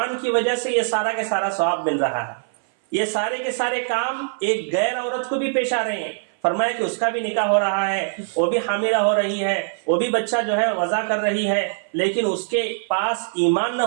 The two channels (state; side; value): silent; left; 59 dB below the other